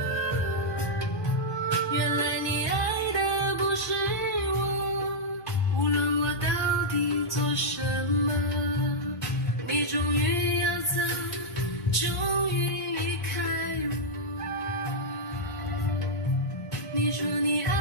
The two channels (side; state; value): right; late; 1.7 ms